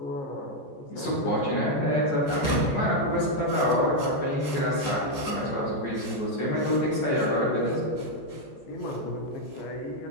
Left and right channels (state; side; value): late; right; 14 ms